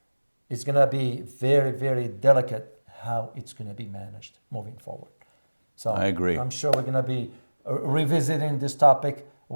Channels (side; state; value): both; inverted; correlation -1.00